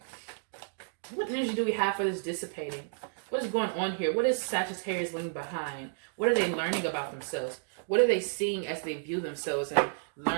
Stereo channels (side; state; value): left; silent; digital silence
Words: What energy do we have for this dissipating? What is going on here? What is Sagittarius leaving behind? What are they learning about themselves? What are they seeing as they view themselves and